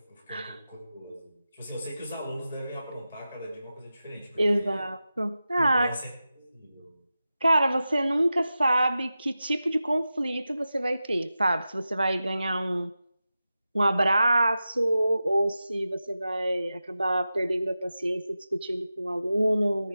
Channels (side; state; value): both; inverted; correlation -0.93